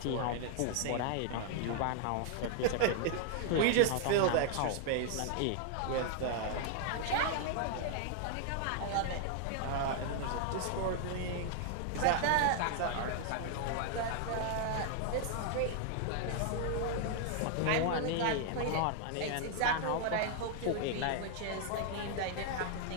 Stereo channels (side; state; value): both; different; correlation 0.00